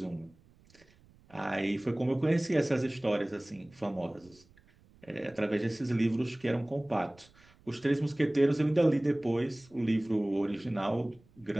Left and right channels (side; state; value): right; noise; rumble, 29 dB below the sound